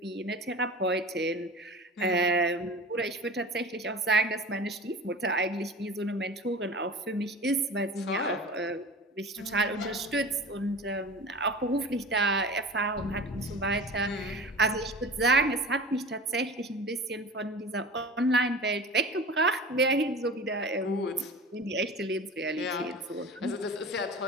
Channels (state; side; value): normal; both; correlation 0.36